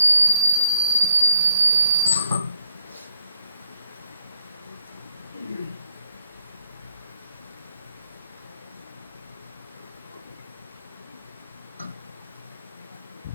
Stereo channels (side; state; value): both; inverted; correlation -0.72